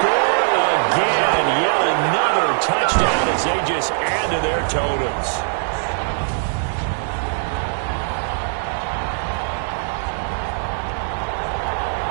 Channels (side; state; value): left; silent; digital silence